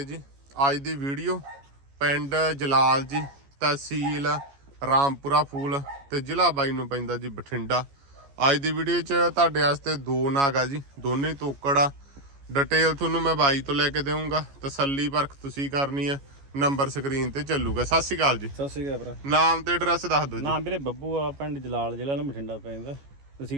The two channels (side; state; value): left; late; 14 ms